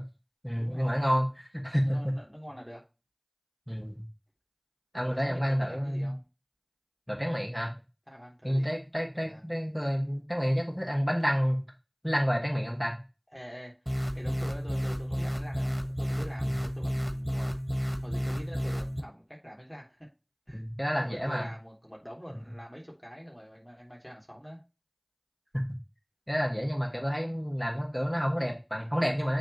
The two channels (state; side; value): identical; both; correlation 1.00